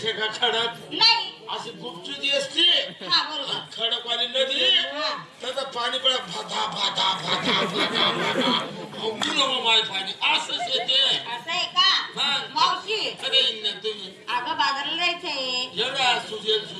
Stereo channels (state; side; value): identical; both; correlation 1.00